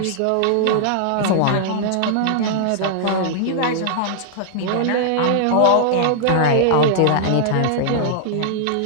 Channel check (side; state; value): both; different; correlation -0.01